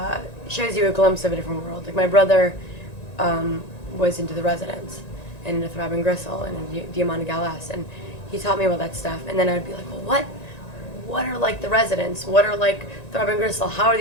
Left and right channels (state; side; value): late; right; 1.9 ms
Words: shows you a glimpse of a different world. Like my brother was into the Residents and into Throbbing Gristle and into Diamante Galas, and he taught me about that stuff. And then I'd be like, well, what are like the Residents? What are like Throbbing Gristle? How are